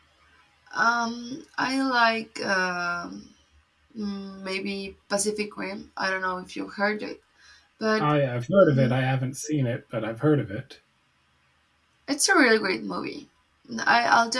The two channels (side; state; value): both; identical; correlation 1.00